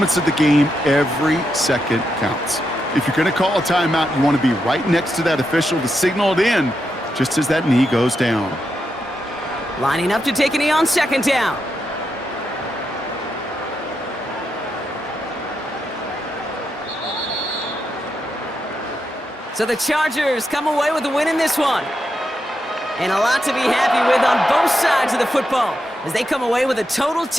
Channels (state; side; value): normal; both; correlation 0.84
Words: of the game, every second counts. If you're going to call a timeout, you want to be right next to that official to signal it in just as that knee goes down. Lining up to take a knee on second down. So the Chargers come away with a win in this one. And a lot to be happy with on both sides of the football as they come away with a total